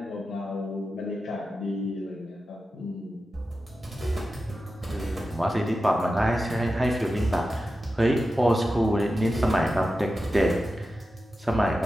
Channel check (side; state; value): both; normal; correlation 0.92